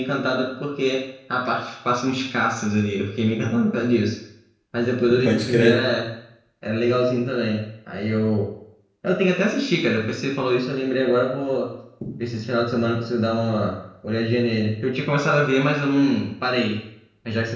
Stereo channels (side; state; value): both; identical; correlation 1.00